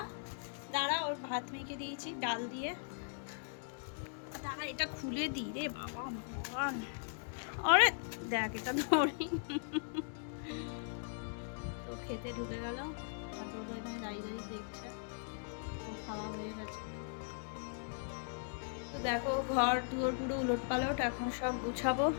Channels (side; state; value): right; silent; digital silence